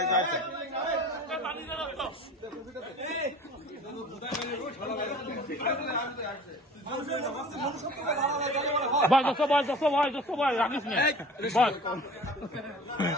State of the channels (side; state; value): both; normal; correlation 0.43